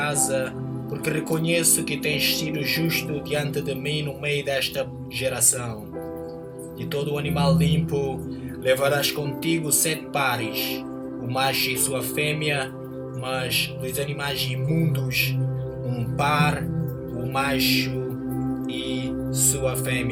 porque reconheço que tens sido justo diante de mim no meio desta geração. De todo o animal limpo levarás contigo 7 pares, o macho e sua fêmea, mas dos animais imundos, 1 par, o macho e sua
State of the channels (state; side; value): identical; both; correlation 1.00